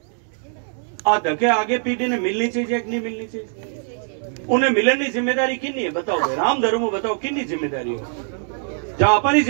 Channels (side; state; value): left; silent; digital silence